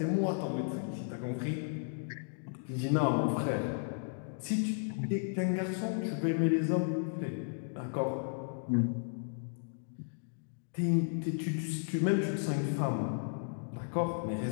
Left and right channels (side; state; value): right; silent; digital silence